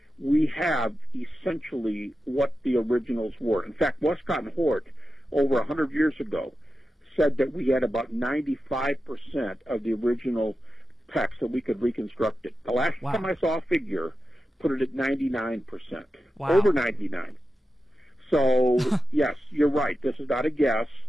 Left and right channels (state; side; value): normal; both; correlation 0.91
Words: we have essentially what the originals were. In fact, Westcott and Hort, over 100 years ago, said that we had about 95% of the original text, that we could reconstruct it. The last time I saw a figure put it at 99%. Wow. Over 99. So, yes, you're right. This is not a guess.